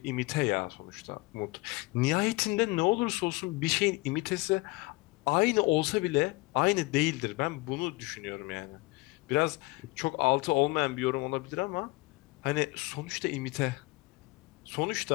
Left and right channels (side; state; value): right; quieter; 23.5 dB